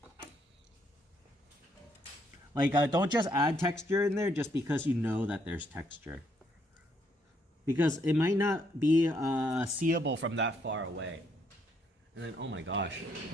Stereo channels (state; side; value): normal; both; correlation 0.72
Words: Like, don't just add texture in there just because you know that there's texture. Because it might not be seeable from that far away. And then, oh my gosh,